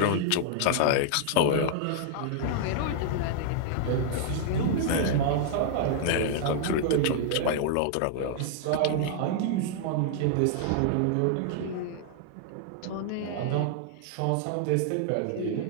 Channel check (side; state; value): both; different; correlation -0.01